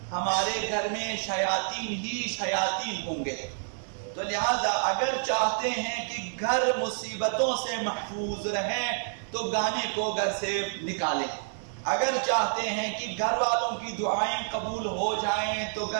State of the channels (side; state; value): left; silent; 57 dB below the other